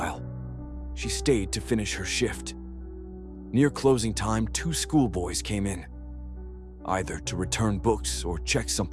She stayed to finish her shift. Near closing time, 2 schoolboys came in, either to return books or check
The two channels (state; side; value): identical; both; correlation 1.00